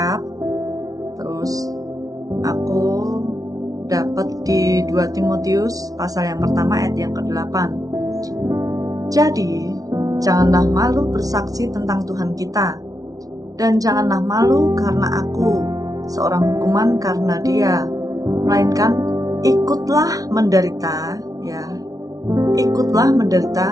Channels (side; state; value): left; late; 0.18 ms